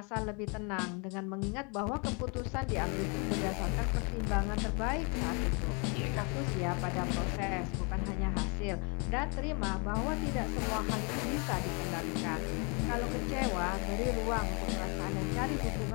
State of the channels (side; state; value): right; quieter; 33.8 dB